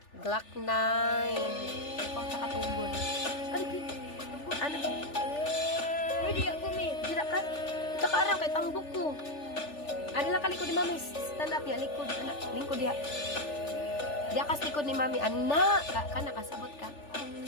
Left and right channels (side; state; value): right; late; 3.4 ms